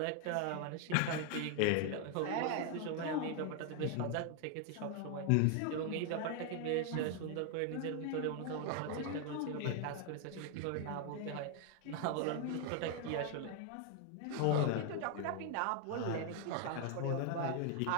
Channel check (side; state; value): both; different; correlation 0.00